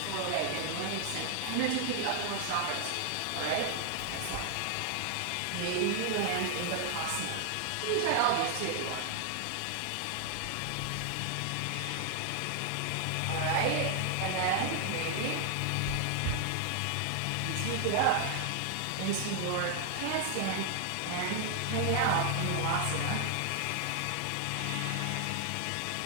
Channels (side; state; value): both; different; correlation 0.00